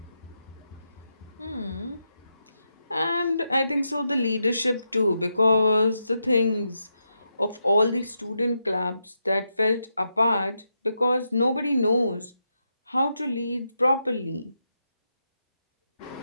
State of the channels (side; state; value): both; inverted; correlation -0.85